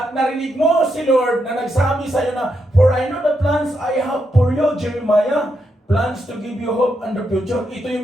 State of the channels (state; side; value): normal; both; correlation 0.82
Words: narinig mo si Lord na nagsabi sa iyo na, for I know the plans I have for you, Jeremiah, plans to give you hope and the future. Ito